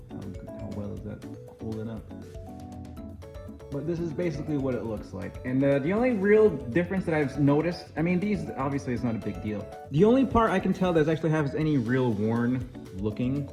know how well is that holding up. But this is basically what it looks like. And the only real difference that I've noticed, I mean, these obviously it's not a big deal. The only part I can tell that actually has any real worn looking,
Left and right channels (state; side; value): identical; both; correlation 1.00